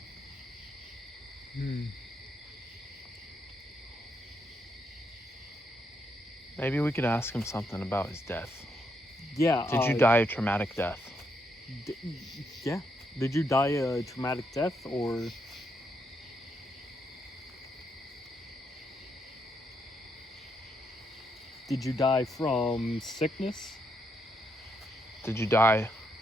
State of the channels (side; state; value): both; normal; correlation 0.78